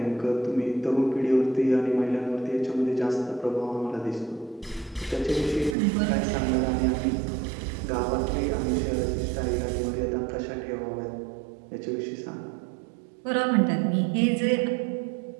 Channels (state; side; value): drops out; left; at 5.8 s